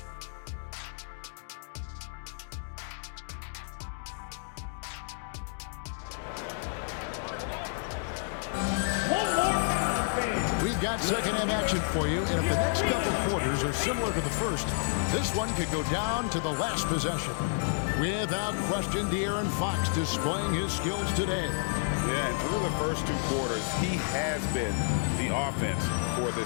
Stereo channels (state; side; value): silent; right; digital silence